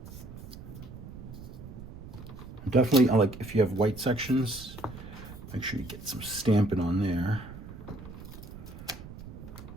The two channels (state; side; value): noise; right; rumble, 13 dB below the sound